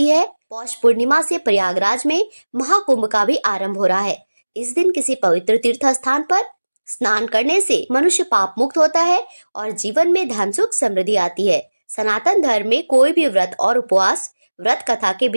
है। पौष पूर्णिमा से प्रयागराज में महाकुंभ का भी आरंभ हो रहा है। इस दिन किसी पवित्र तीर्थ स्थान पर स्नान करने से मनुष्य पाप मुक्त होता है और जीवन में धन सुख समृद्धि आती है। सनातन धर्म में कोई भी व्रत और उपवास व्रत कथा के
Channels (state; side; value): inverted; both; correlation -1.00